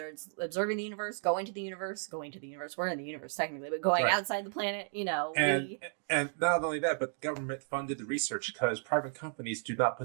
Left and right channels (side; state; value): left; silent; 55 dB below the other